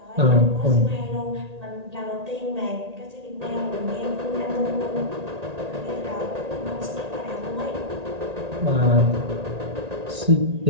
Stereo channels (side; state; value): left; late; 1.8 ms